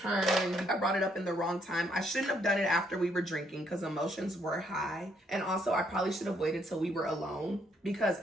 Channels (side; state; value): both; normal; correlation 0.71